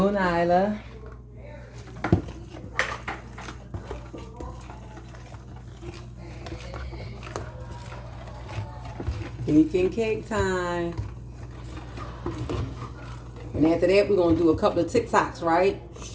Nyla. Baking cake time. And after that, we're going to do a couple of TikToks, right?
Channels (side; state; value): both; identical; correlation 1.00